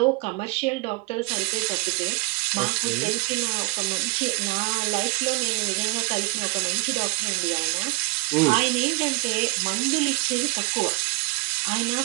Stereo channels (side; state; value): left; quieter; 27.2 dB